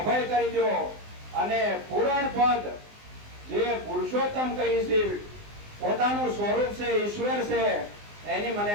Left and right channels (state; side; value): late; left; 19 ms